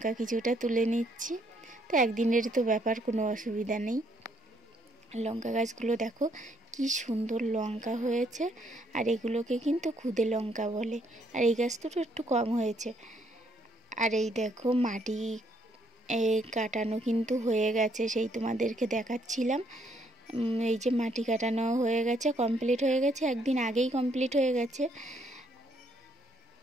কিছুটা তুলে নিচ্ছি। তো একদিনের তো ব্যাপার, কোনো অসুবিধা নেই। লঙ্কা গাছগুলো দেখো কি সুন্দর লঙ্কা হয়েছে, আর এগুলোকে কিন্তু খুদে লঙ্কা বলে, আর এই গাছ দুটো একটু কম হয়েছে। আর এই দেখো মাটি কাটানো কিন্তু হয়ে গেছে, সেই তোমাদেরকে দেখাচ্ছিলাম। এই যে মাটি কাটানো হয়ে গেছে, কমপ্লিট হয়ে গেছে, একদিন আগেই কমপ্লিট হয়ে গেছে,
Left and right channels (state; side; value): normal; both; correlation 0.70